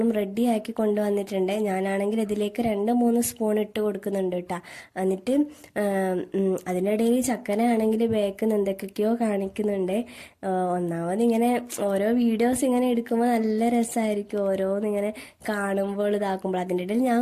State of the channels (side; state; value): both; identical; correlation 1.00